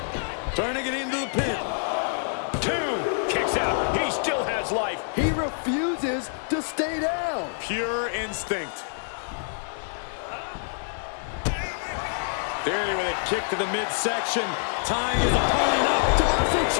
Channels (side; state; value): right; silent; digital silence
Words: Trying to get into the pin. 2. Kicks out. He still has life. He refuses to stay down. Pure instinct. Theory with a kick to the midsection. Tying his opponent up. Tommaso